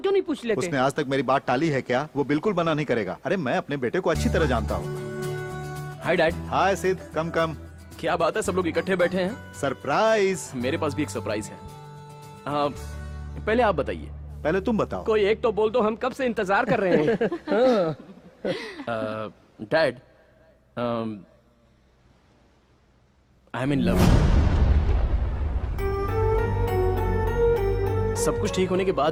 नहीं पूछ लेते? उसने आज तक मेरी बात टाली है क्या? वो बिल्कुल मना नहीं करेगा। अरे मैं अपने बेटे को अच्छी तरह जानता हूँ। Hi dad. हाय सिद्ध, कम कम। क्या बात है, सब लोग इकट्ठे बैठे हैं? सरप्राइज। मेरे पास भी एक सरप्राइज है। पहले आप बताइए। पहले तुम बताओ। कोई एक तो बोल दो, हम कब से इंतजार कर रहे हैं। Dad, I M in love. सब कुछ ठीक होने के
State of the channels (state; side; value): identical; both; correlation 1.00